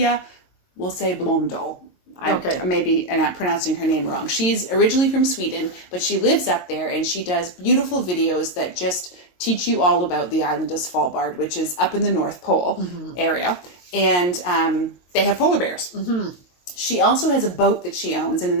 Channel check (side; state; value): right; late; 22 ms